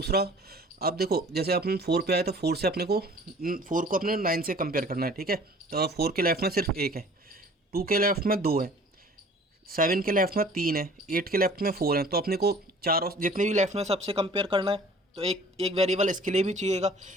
अब देखो जैसे अपन 4 पे आए तो 4 से अपने को 4 को अपने 9 से कंपेयर करना है, ठीक है। तो 4 के लेफ्ट में सिर्फ 1 है, 2 के लेफ्ट में 2 है, 7 के लेफ्ट में 3 है, 8 के लेफ्ट में 4 है। तो अपने को चारों जितने भी लेफ्ट में सबसे कंपेयर करना है। तो एक वेरिएबल इसके लिए भी चाहिएगा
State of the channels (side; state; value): both; normal; correlation 0.49